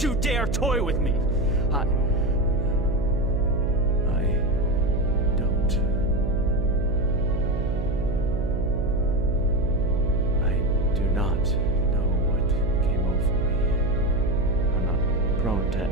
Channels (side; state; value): right; noise; hum, 4 dB below the sound